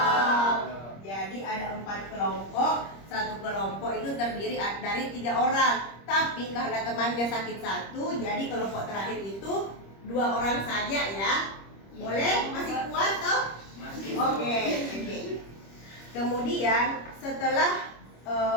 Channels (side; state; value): right; late; 25 ms